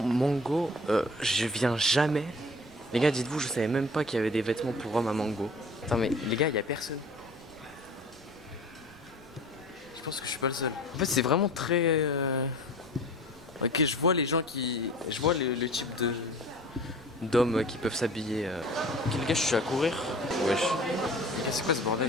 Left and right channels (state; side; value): noise; right; rumble, 24 dB below the sound